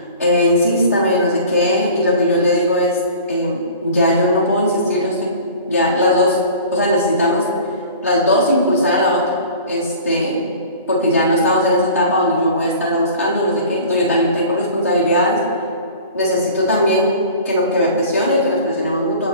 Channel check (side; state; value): both; inverted; correlation -0.43